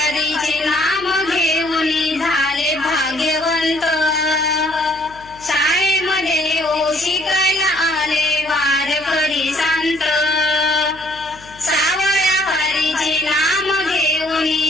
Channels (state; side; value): noise; left; hum, 23 dB below the sound